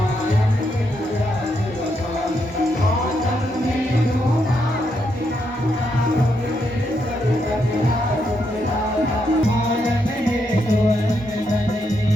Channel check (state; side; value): normal; both; correlation 0.79